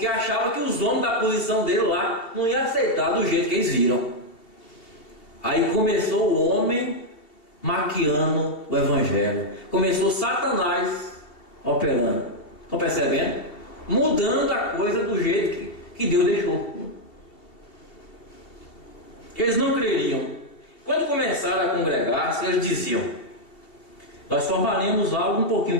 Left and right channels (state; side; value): late; right; 2.7 ms